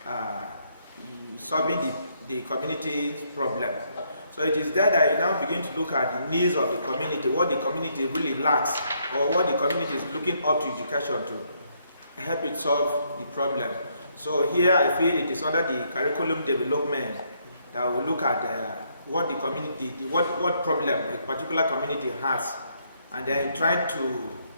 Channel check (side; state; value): both; inverted; correlation -0.72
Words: solving the community's problem. So it is there that you now begin to look at the needs of the community, what the community really lacks, or what the community is looking up to education to help it solve the problem. So here I feel it is under the curriculum development that we look at what the community, what problem a particular community has, and then trying to